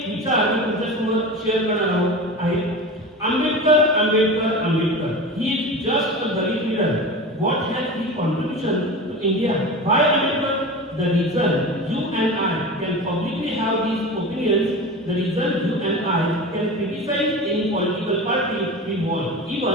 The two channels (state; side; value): normal; both; correlation 0.31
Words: विचार मी तुमच्यासमोर शेअर करणार आहोत आहे. Ambedkar, Ambedkar, Ambedkar. He is just a Dalit leader. What has he contribution to India? Why Ambedkar? The reason you and I can publicly have these opinions, the reason you and I can criticize any political party we want,